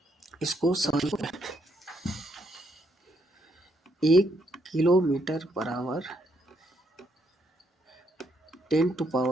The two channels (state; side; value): normal; both; correlation 0.75